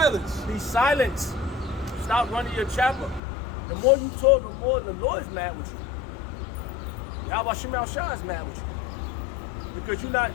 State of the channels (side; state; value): right; drops out; at 3.2 s